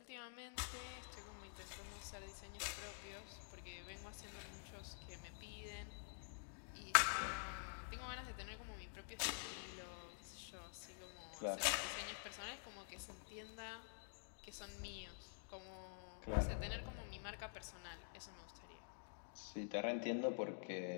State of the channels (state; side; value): silent; right; digital silence